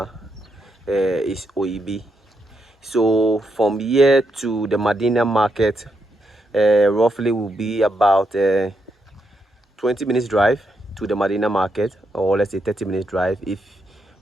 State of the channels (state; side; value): normal; both; correlation 0.80